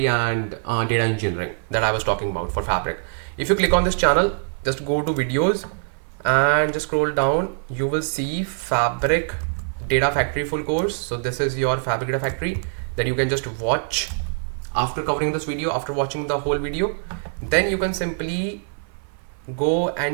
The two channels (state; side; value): silent; left; 59 dB below the other